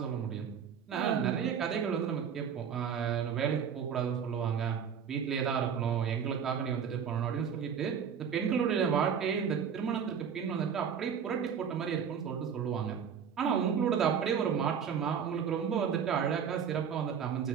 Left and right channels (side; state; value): left; quieter; 7.4 dB